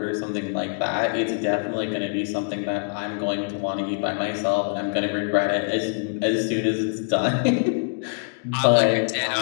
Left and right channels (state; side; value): silent; right; digital silence